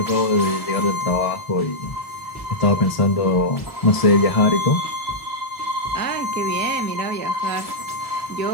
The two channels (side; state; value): right; late; 1.0 ms